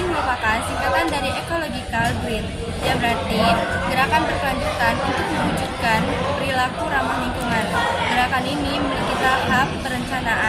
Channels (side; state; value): both; identical; correlation 1.00